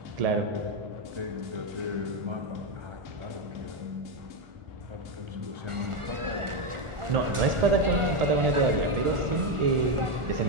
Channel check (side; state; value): left; late; 1.4 ms